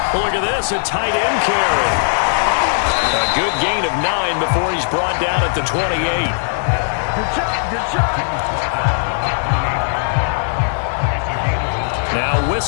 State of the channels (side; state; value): right; silent; 68 dB below the other